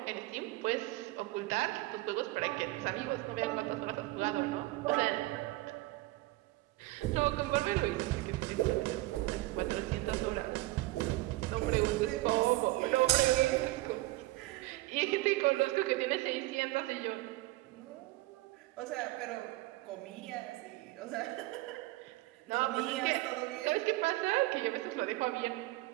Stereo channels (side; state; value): left; quieter; 19.3 dB